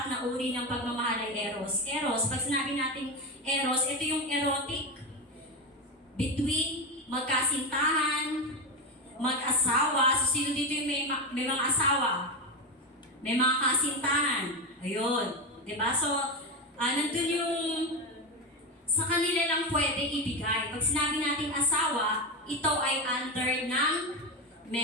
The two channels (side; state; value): both; normal; correlation 0.15